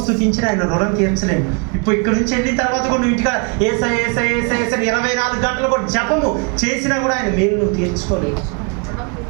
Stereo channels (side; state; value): left; quieter; 34.7 dB